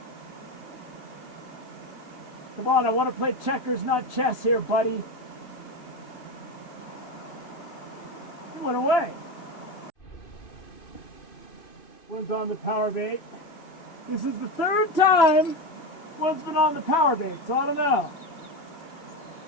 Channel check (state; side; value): late; right; 3.0 ms